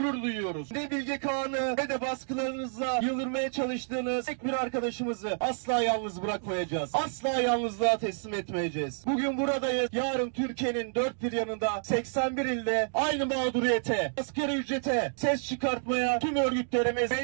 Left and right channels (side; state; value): left; silent; digital silence